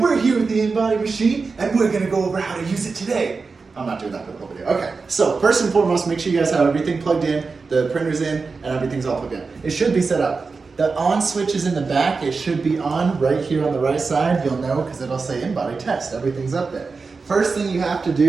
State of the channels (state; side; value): quieter; left; 4.5 dB